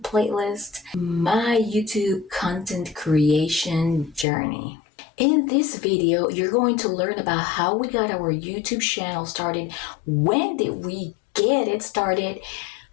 playlist, my YouTube content creation journey. In this video, you're going to learn about how we got our YouTube channel started, when did we get it started,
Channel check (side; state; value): right; drops out; at 4.2 s